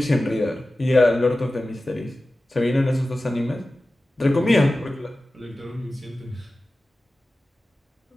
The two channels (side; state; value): both; normal; correlation 0.95